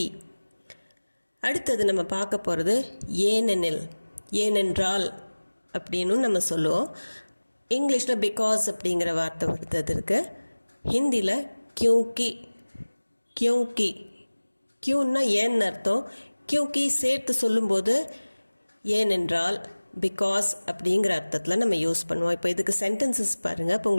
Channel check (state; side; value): inverted; both; correlation -1.00